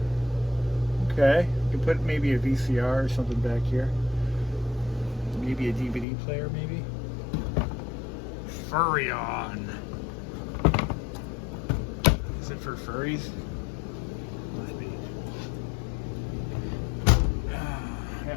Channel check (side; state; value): right; drops out; at 6.1 s